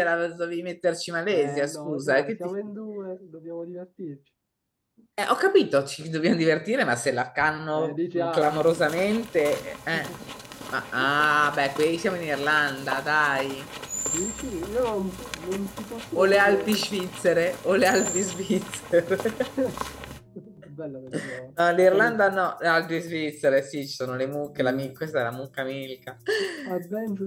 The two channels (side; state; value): both; identical; correlation 1.00